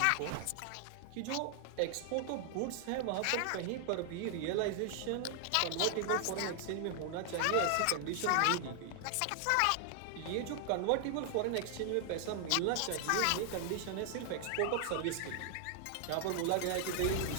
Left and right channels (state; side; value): different; both; correlation 0.00